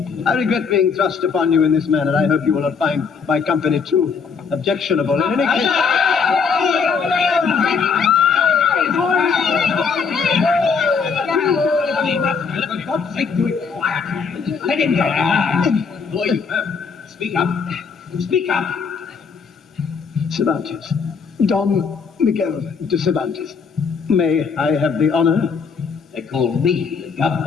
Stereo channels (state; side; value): quieter; right; 5.6 dB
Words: I regret being thrust upon you in this manner. I hope you will not find my company too objectionable. In any case... For God's sake, do it quietly. Let him go. Boy, you have. Speak up. Speak up. Cervantes. Don Miguel de Cervantes. May I have the honor? They call me the